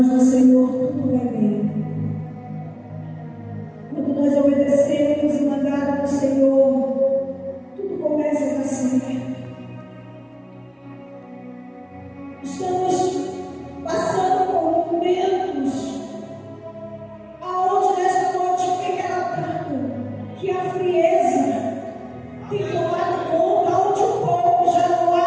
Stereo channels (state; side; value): identical; both; correlation 1.00